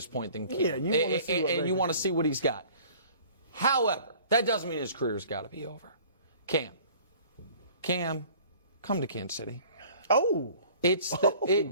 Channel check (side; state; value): both; inverted; correlation -0.49